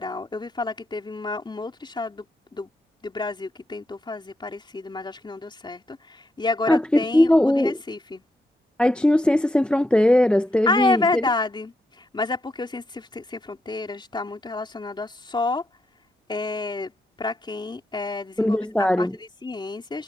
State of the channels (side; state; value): both; normal; correlation 0.82